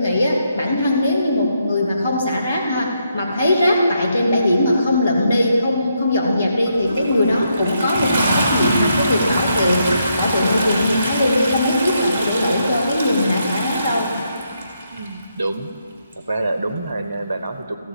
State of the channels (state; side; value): inverted; both; correlation -0.78